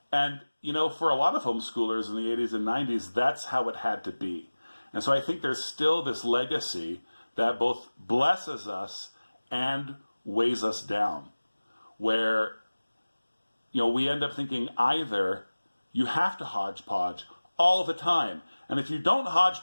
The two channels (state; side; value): inverted; both; correlation -1.00